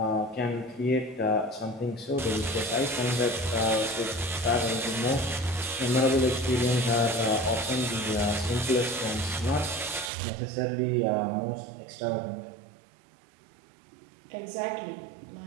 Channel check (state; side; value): drops out; left; at 10.1 s